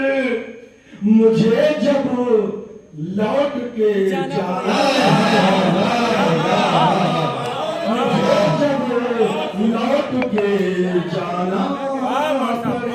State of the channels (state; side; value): identical; both; correlation 1.00